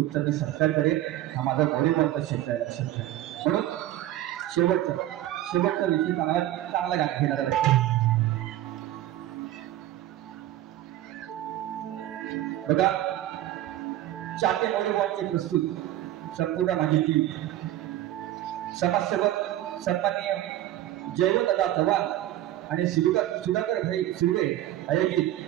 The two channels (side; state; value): left; quieter; 13.9 dB